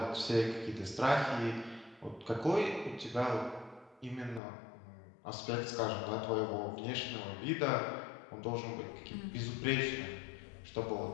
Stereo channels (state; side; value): drops out; right; at 4.4 s